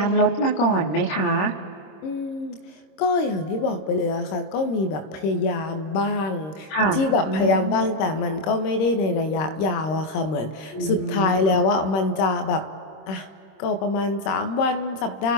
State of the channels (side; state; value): right; late; 26 ms